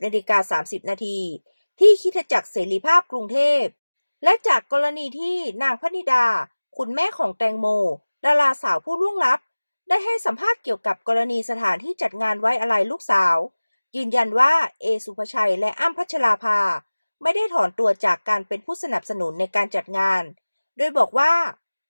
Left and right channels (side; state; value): both; inverted; correlation -1.00